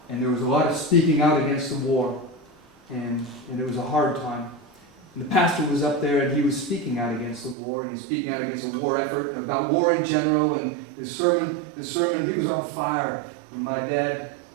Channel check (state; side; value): drops out; left; at 7.6 s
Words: and there was a lot of speaking out against the war, and it was a hard time. And the pastor was up there, and he was speaking out against the war, and he's speaking out against a war effort, and about war in general, and his sermon, he was on fire. And my dad